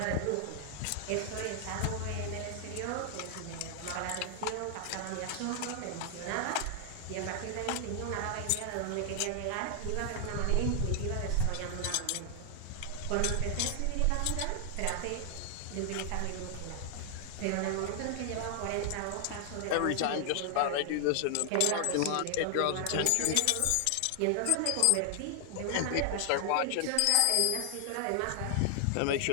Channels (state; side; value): different; both; correlation 0.00